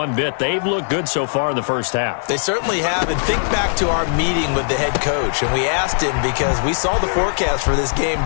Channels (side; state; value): right; silent; digital silence